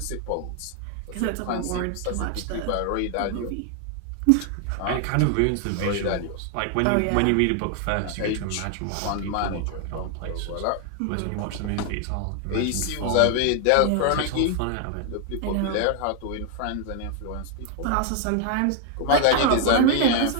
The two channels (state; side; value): different; both; correlation 0.00